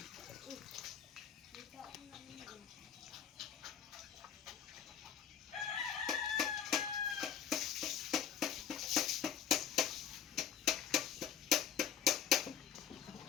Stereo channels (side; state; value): right; quieter; 8.9 dB